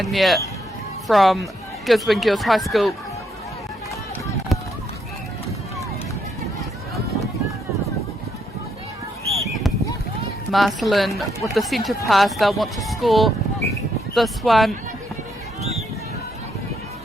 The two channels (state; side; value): normal; both; correlation 0.75